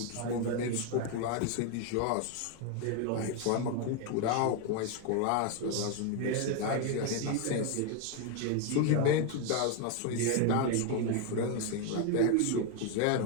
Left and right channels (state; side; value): different; both; correlation 0.01